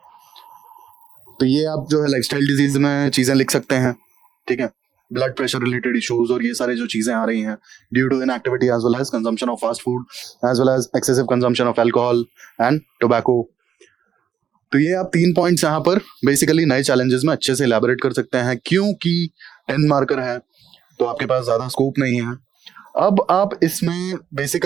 तो ये आप जो है लाइफस्टाइल डिजीज में चीजें लिख सकते हैं. ठीक है, ब्लड प्रेशर रिलेटेड इश्यूज और ये सारे जो चीजें आ रही हैं due to inactivity as well as consumption of fast food as well as excessive consumption of alcohol and tobacco. तो ये आप 3 पॉइंट्स यहाँ पर बेसिकली नए चैलेंजेस में अच्छे से इलैबोरेट कर सकते हैं, क्योंकि 10 मार्कर है, तो आपके पास ज्यादा स्कोप नहीं है। अब आप इसमें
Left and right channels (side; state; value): left; quieter; 8.6 dB